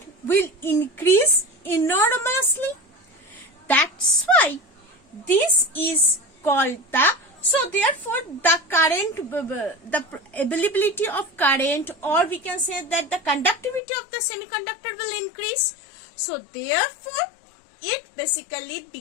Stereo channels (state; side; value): drops out; right; at 13.8 s